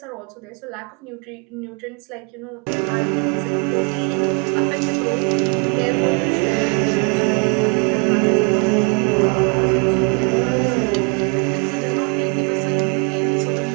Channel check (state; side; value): quieter; left; 35.5 dB